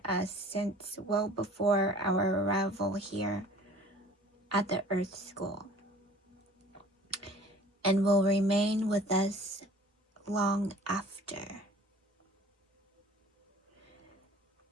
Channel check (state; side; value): normal; both; correlation 0.48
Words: us since well before our arrival here at the Earth School, and will remain with us long after.